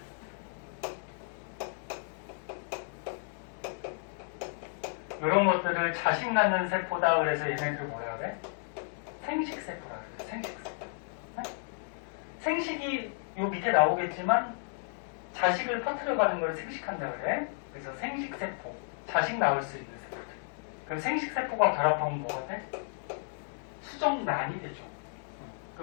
이런 것들을 자식 낳는 세포다 그래서 얘네들 뭐라 그래? 생식세포라 그래. 생식세포. 네? 생식이 요 밑에 나오겠지만 자식을 퍼뜨려가는 걸 생식한다 그래. 그래서 생식세포. 자식 낳을 수 있는 세포들. 그럼 생식세포가 결합하면 뭐가 돼? 수정난이 되죠.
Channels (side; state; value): right; silent; digital silence